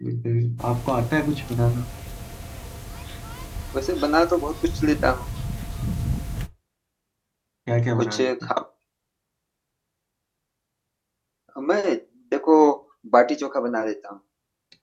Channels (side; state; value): both; identical; correlation 1.00